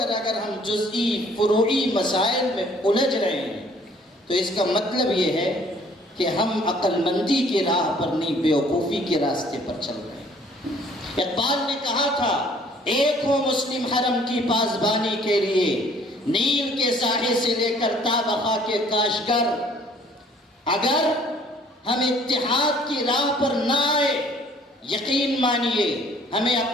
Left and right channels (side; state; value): both; normal; correlation 0.58